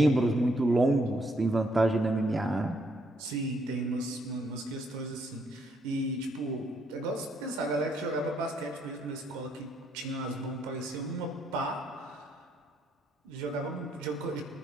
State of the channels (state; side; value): normal; both; correlation 0.72